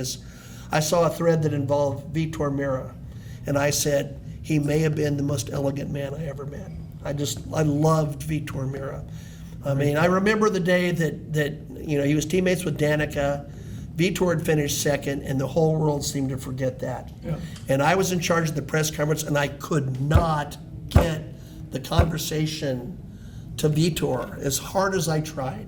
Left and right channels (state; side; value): identical; both; correlation 1.00